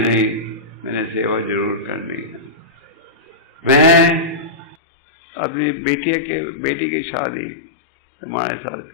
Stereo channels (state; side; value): drops out; right; at 4.8 s